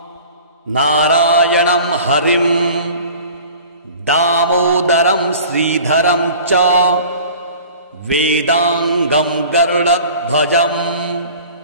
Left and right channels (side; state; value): both; inverted; correlation -0.44